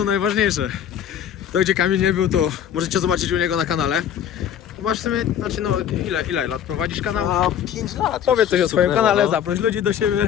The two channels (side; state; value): right; quieter; 9.4 dB